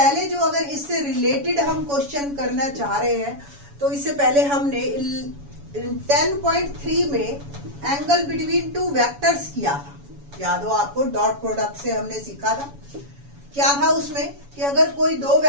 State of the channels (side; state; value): left; late; 7.1 ms